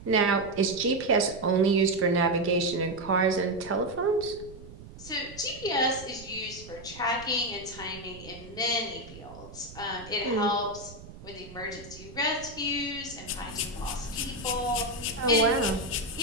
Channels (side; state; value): right; noise; rumble, 16 dB below the sound